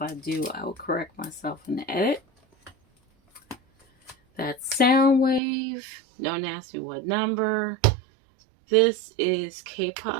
I do, I will correct myself in the edit. That's Soundwave. Don't ask me what number. This is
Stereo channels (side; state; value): left; drops out; at 5.4 s